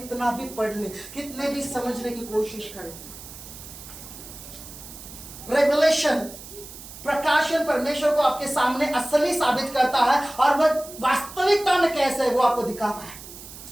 भी पढ़ ले, कितने भी समझने की कोशिश करें। रेवलेशन, प्रकाशन परमेश्वर को आपके सामने असली साबित करता है, और वह वास्तविकता में कैसे है वो आपको दिखाता है।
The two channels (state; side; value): noise; right; hiss, 15 dB below the sound